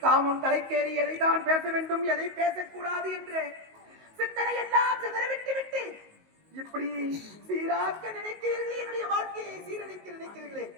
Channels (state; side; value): late; left; 19 ms